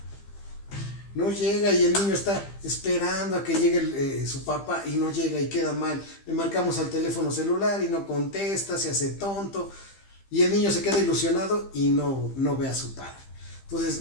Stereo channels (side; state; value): right; late; 15 ms